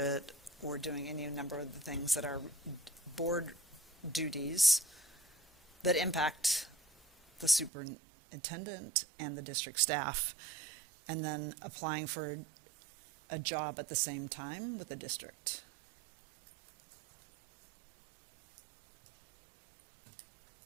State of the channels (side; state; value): left; drops out; at 7.7 s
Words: or doing any number of the things that are board duties that impact the superintendent and the district staff, and then applying for a job at the same time with the district.